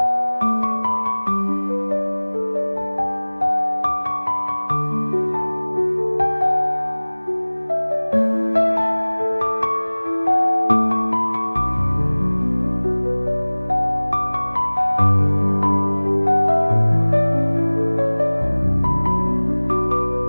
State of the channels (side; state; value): both; inverted; correlation -1.00